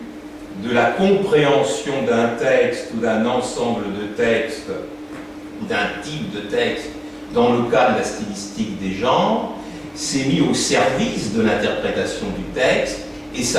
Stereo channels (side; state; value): both; identical; correlation 1.00